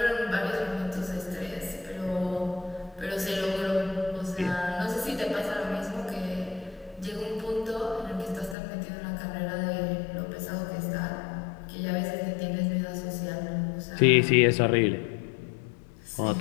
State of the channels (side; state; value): right; drops out; at 8.6 s